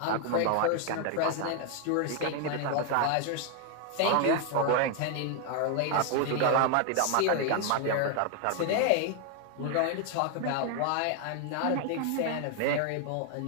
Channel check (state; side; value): different; both; correlation 0.00